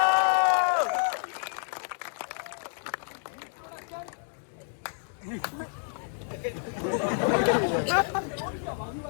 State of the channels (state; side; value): silent; right; 58 dB below the other